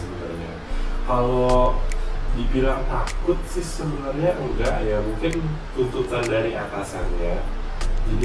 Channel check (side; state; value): both; identical; correlation 1.00